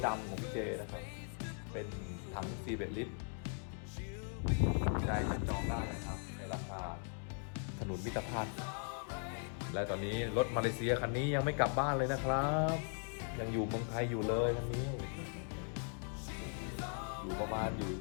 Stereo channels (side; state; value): right; silent; 52 dB below the other